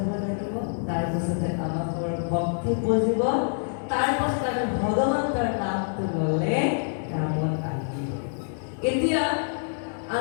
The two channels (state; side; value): silent; right; digital silence